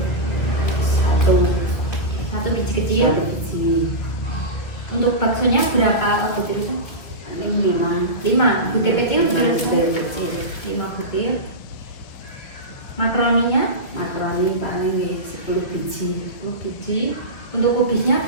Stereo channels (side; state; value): right; late; 2.0 ms